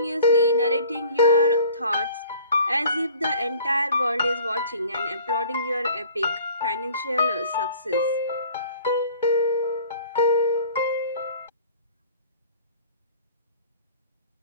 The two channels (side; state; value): both; inverted; correlation -0.50